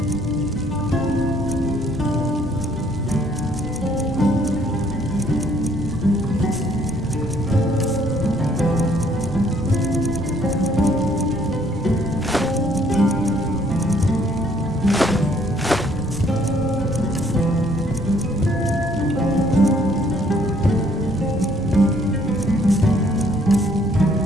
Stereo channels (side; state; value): both; normal; correlation 0.64